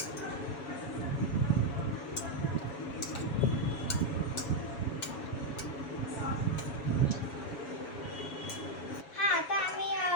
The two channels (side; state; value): right; late; 7.2 ms